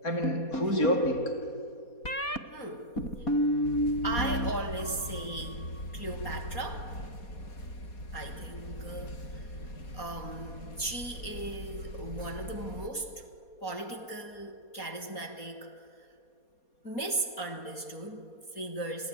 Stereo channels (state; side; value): late; right; 4.2 ms